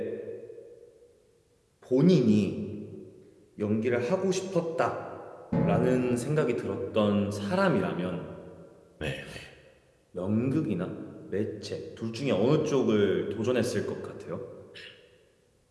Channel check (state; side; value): identical; both; correlation 1.00